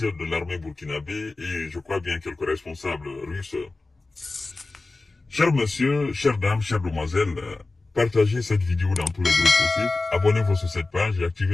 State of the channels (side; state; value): right; quieter; 3.3 dB